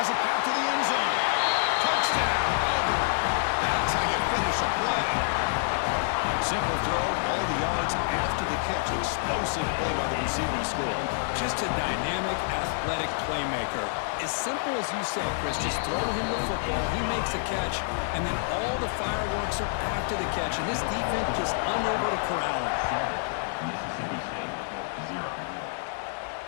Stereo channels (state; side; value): silent; right; digital silence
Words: a path to the end zone. Touchdown, Auburn. That's how you finish a play. Simple throw, all the yards after the catch. Explosive play by the receiver to score. Just a dynamic, athletic playmaker. As simple as you said, Chris, just throw him the football, he makes the catch, and then all the fireworks are after the catch, and this defense just unable to corral him. Mississippi State 0.